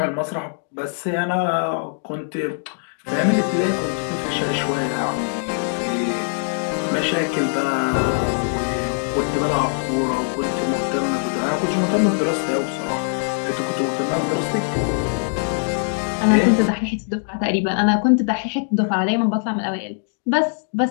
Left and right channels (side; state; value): right; silent; digital silence